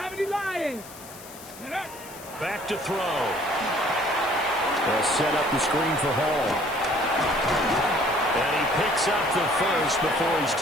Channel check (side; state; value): left; noise; hiss, 17 dB below the sound